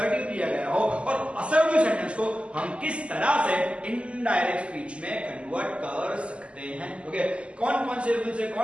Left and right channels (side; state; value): left; late; 0.056 ms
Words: दिया गया हो और असर्टिव सेंटेंस को हम किस तरह से इनडायरेक्ट स्पीच में कन्वर्ट कर सकते हैं। ओके, कौन कौन से रूल्स है,